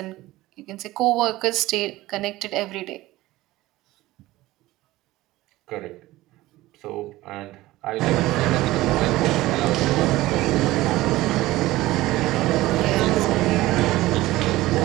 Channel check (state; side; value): quieter; left; 17.6 dB